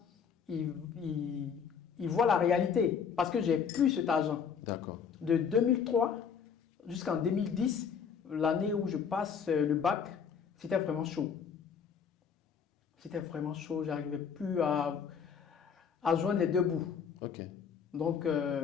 il voit la réalité parce que j'ai plus cet argent. D'accord. De 2003 jusqu'en 2010, l'année où je passe le bac, c'était vraiment chaud. C'était vraiment chaud, j'arrivais plus à joindre les deux bouts. Ok. Donc,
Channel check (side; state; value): right; quieter; 6.8 dB